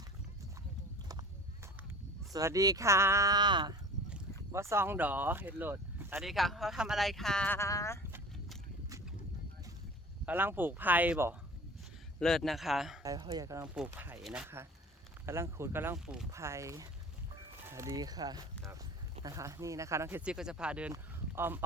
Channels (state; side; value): normal; both; correlation 0.41